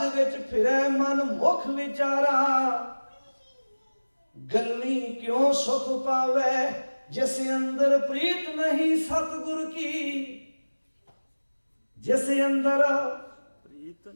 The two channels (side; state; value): both; inverted; correlation -1.00